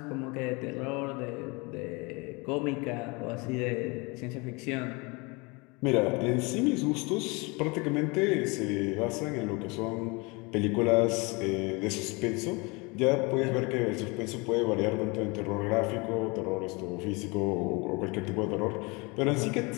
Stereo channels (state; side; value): quieter; right; 27.7 dB